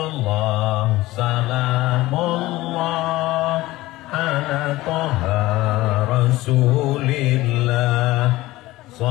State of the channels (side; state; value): right; quieter; 18.1 dB